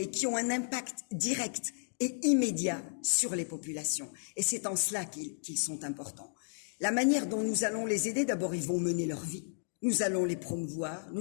qui ont un impact direct et immédiat sur les populations. Et c'est en cela qu'ils sont importants. La manière dont nous allons les aider, d'abord, ils vont mener leur vie. Nous allons les promouvoir,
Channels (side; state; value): right; silent; digital silence